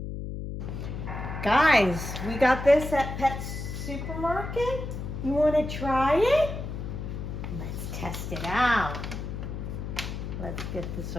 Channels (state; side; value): noise; left; hum, 6 dB below the sound